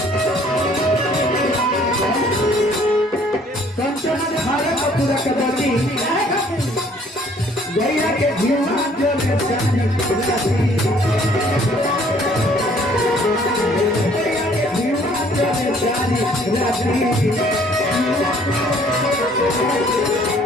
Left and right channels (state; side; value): normal; both; correlation 0.59